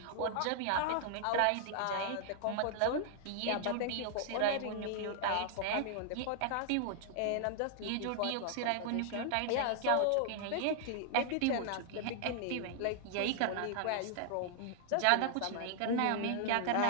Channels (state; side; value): different; both; correlation -0.01